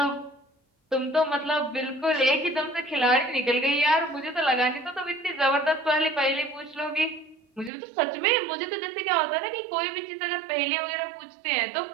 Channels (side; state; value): left; drops out; at 7.7 s